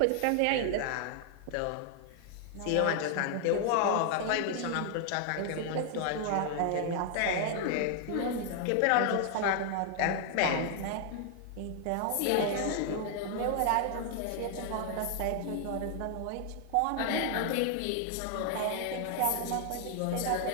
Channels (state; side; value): different; both; correlation 0.00